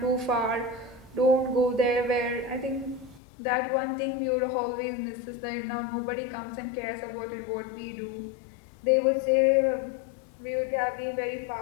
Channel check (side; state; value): right; drops out; at 3.2 s